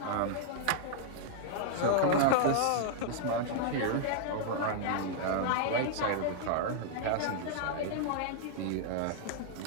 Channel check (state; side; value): different; both; correlation -0.01